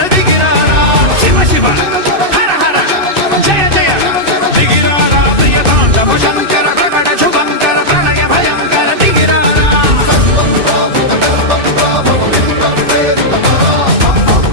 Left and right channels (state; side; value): late; left; 2.6 ms